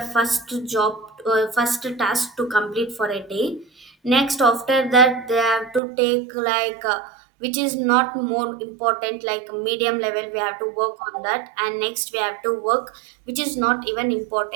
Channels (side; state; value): left; drops out; at 5.8 s